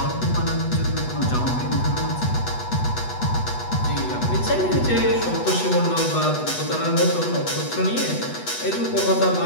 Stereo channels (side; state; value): right; late; 8.1 ms